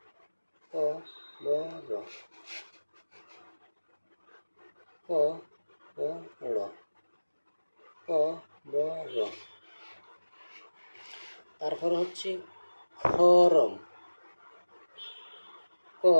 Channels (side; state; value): both; inverted; correlation -1.00